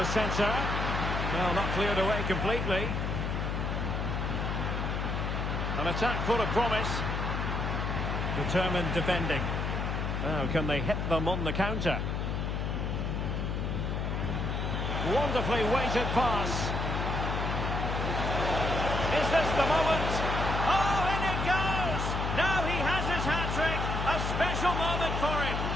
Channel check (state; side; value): noise; left; hum, 1 dB below the sound